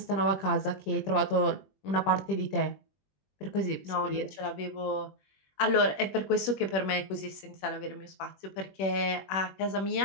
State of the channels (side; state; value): right; late; 21 ms